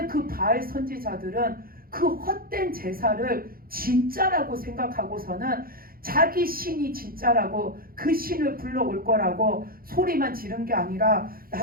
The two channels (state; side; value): late; left; 0.42 ms